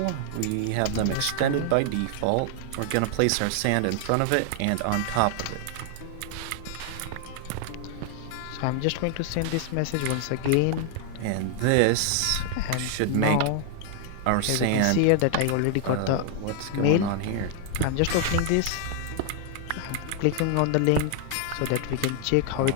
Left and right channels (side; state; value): both; different; correlation 0.00